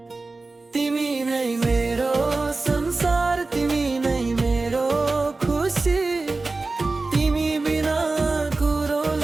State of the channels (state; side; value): quieter; left; 3.5 dB